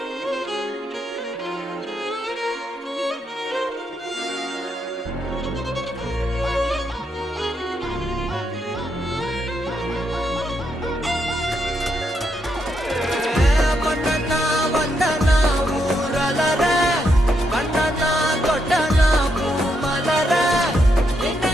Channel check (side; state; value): both; normal; correlation 0.80